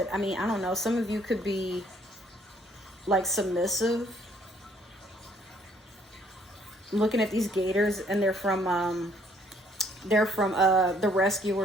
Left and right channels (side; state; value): both; normal; correlation 0.64